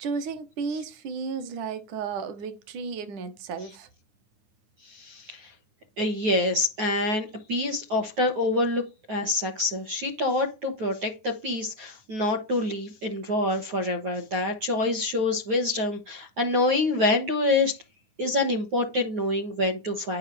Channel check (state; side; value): late; left; 9.6 ms